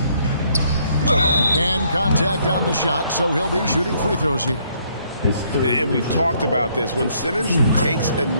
And contact on the shot, so he'll be shooting free throws here. And we've talked about this. When Simmons takes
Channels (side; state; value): both; inverted; correlation -0.67